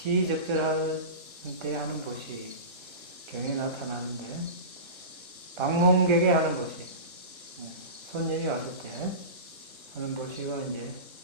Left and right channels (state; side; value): late; left; 1.2 ms